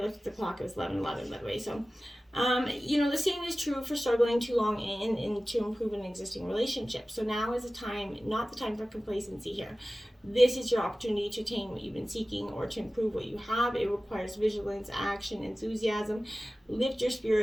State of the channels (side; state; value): both; normal; correlation 0.96